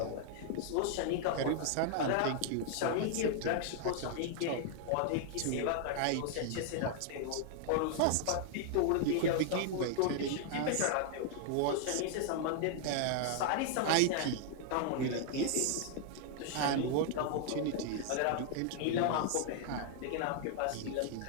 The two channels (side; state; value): both; different; correlation 0.00